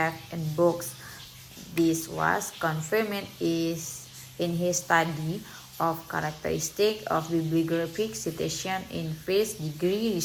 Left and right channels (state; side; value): identical; both; correlation 1.00